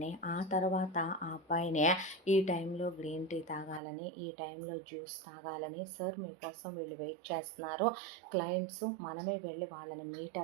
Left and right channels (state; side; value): drops out; left; at 3.8 s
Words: ఆ తర్వాత ఆ అబ్బాయిని ఈ టైంలో గ్రీన్ టీ తాగాలని ఈ టైంలో జ్యూస్ తాగాలని సార్ మీకోసం వీళ్ళు వెయిట్ చేస్తున్నారు క్లయింట్స్ మనమే వెళ్ళి వాళ్ళని మీట్